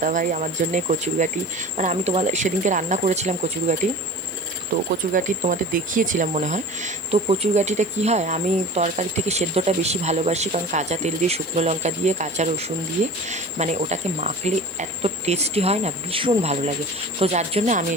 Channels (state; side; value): noise; left; hiss, 22 dB below the sound